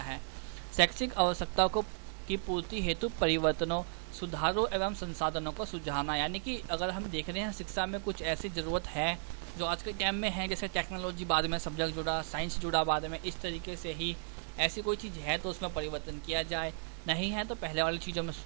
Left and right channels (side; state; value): left; silent; digital silence